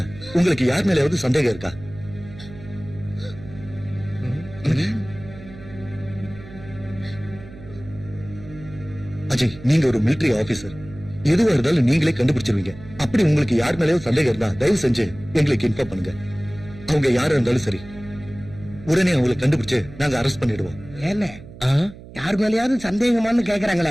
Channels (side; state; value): right; noise; hum, 17 dB below the sound